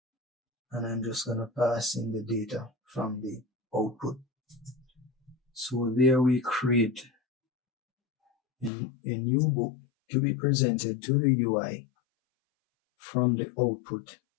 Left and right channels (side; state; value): right; drops out; at 8.7 s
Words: and I'm just going to pass in the data from the output. So there we create a new book to be presented to the UI from the output